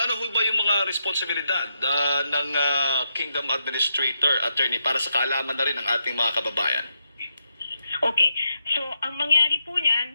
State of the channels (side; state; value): both; inverted; correlation -0.83